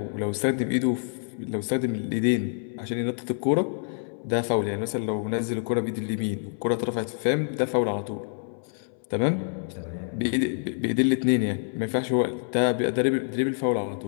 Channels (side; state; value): right; silent; 60 dB below the other